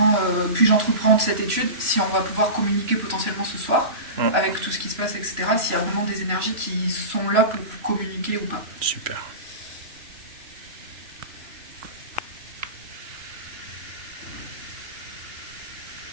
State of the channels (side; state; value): left; late; 3.0 ms